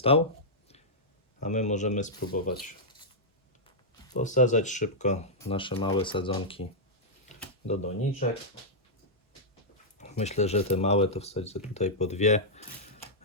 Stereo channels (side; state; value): both; normal; correlation -0.09